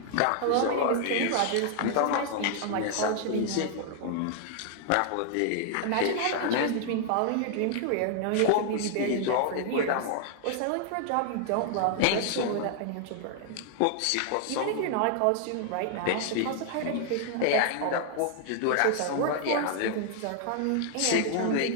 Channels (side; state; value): both; different; correlation 0.00